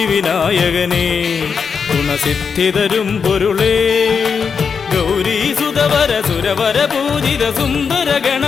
ഗുണസിദ്ധിതരും പൊരുളേ ഗൗരീസുതവര സുരവര പൂജിത സുന്ദര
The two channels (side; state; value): right; quieter; 6.0 dB